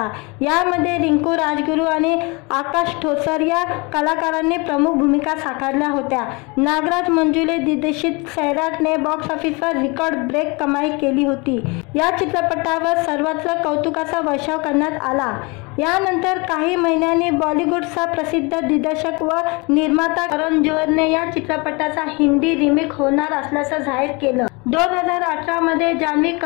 यामध्ये रिंकू राजगुरू आणि आकाश ठोसर या कलाकारांनी प्रमुख भूमिका साकारल्या होत्या। नागराज मंजुळे दिग्दर्शित सैराटने बॉक्स ऑफिसवर रेकॉर्ड ब्रेक कमाई केली होती। या चित्रपटावर सर्वत्र कौतुकाचा वर्षाव करण्यात आला। यानंतर काही महिन्यांनी बॉलिवूडचा प्रसिद्ध दिग्दर्शक व निर्माता करण जोहरने या चित्रपटाचा हिंदी रिमेक होणार असल्याचं जाहीर केलं। 2018 मध्ये जान्हवी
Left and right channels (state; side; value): quieter; right; 28.2 dB